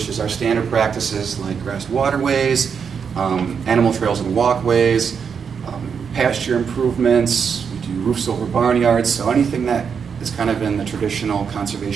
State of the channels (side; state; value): left; quieter; 6.6 dB